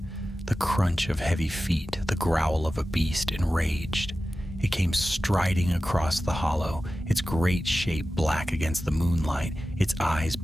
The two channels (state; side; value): normal; both; correlation 0.94